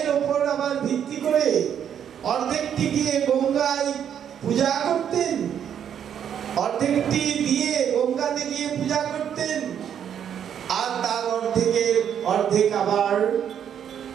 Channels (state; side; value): quieter; left; 8.9 dB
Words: উপর আবার ভিত্তি করে অর্ধেকটি গিয়ে গঙ্গায় পূজা করতেন, অর্ধেকটি দিয়ে গঙ্গাতে গিয়ে পূজা করতেন, আর তার অর্ধেক আবার